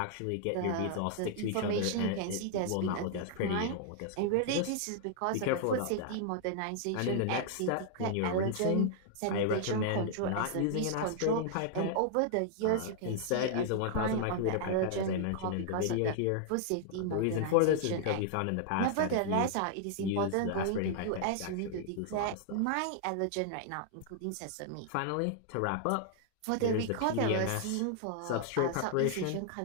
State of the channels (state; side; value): different; both; correlation -0.01